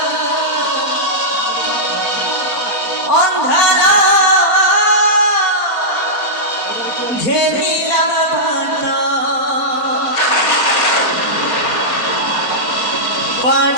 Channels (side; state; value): right; late; 4.4 ms